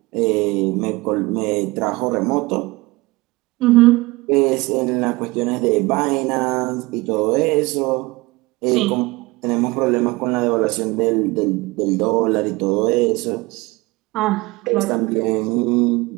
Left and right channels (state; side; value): quieter; left; 22.3 dB